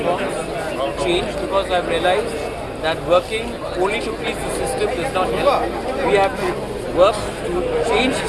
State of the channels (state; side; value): identical; both; correlation 1.00